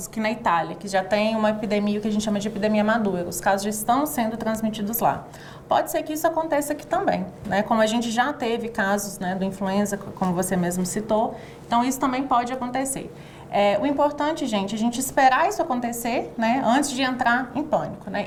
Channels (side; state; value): both; identical; correlation 1.00